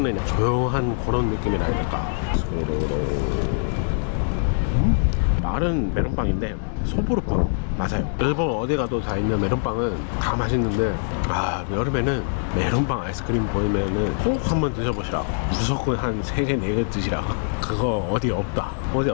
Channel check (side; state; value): right; silent; 63 dB below the other